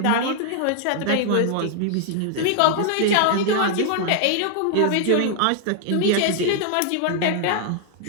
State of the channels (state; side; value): different; both; correlation 0.00